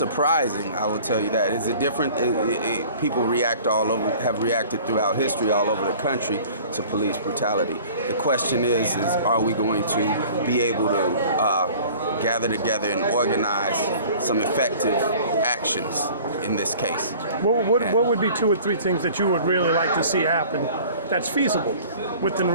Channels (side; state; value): both; inverted; correlation -0.47